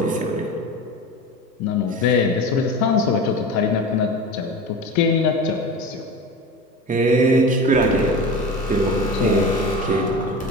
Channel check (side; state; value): both; normal; correlation 0.30